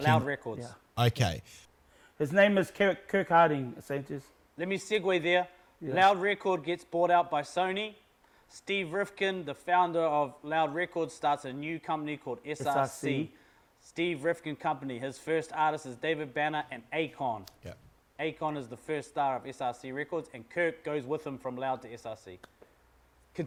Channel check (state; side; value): identical; both; correlation 1.00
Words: Loud Records. Yeah. Okay. His name is Kirk Harding, Sanchez. Let me segue there. Yeah. Loud Record gets bought out by Sony. Steve Rifkin, the founder of Loud Records, starts a new company called SRC. Steve Rifkin Company. His first artist is David Banner and Akon. Yeah. Akon is the first star of SRC Records, and Kirk goes with him from Loud to SRC.